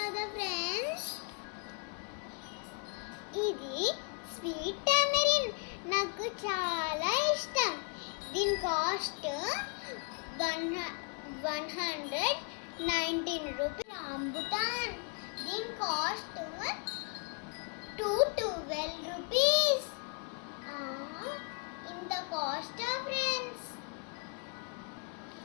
ఫ్రెండ్స్. ఇది స్వీట్ టామరిన్, నాకు చాలా ఇష్టం. దీని కాస్ట్ 119 రూపీస్. రాంబుటాన్, దీని కాస్ట్ 212 రూపీస్. ఇంత కాస్ట్ ఫ్రెండ్స్.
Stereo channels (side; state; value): right; quieter; 37.0 dB